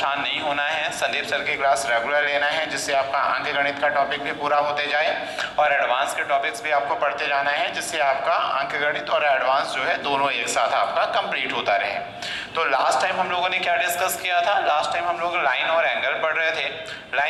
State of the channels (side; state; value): both; identical; correlation 1.00